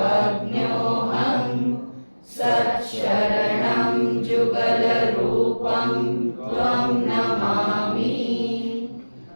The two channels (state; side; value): inverted; both; correlation -1.00